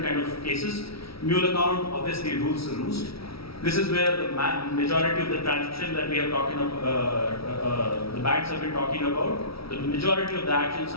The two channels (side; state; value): right; late; 0.75 ms